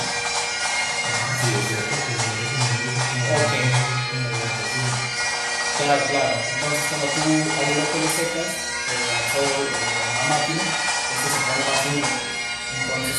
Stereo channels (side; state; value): both; identical; correlation 1.00